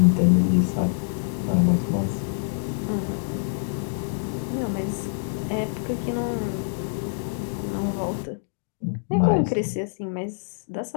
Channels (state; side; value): silent; right; digital silence